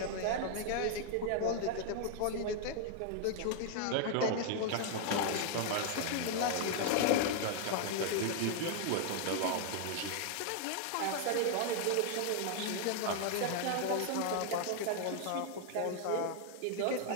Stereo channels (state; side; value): different; both; correlation 0.00